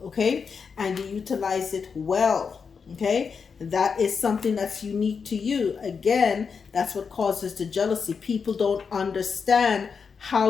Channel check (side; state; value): right; quieter; 5.8 dB